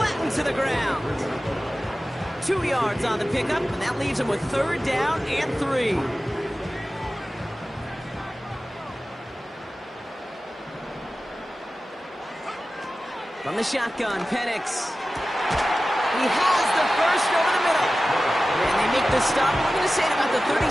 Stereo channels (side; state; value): both; normal; correlation 0.95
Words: to the ground. 2 yards on the pickup, and that leaves him with 3rd down and 3. From the shotgun, Penix. He has the first over the middle. And they make the stop. We're going to say at about the